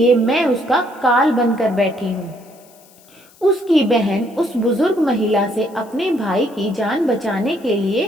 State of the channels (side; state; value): left; noise; hiss, 27 dB below the sound